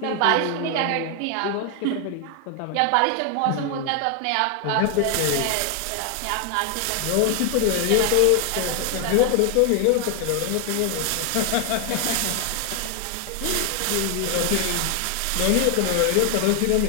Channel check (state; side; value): different; both; correlation 0.00